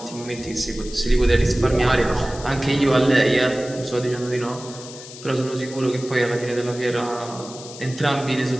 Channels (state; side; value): noise; left; hiss, 15 dB below the sound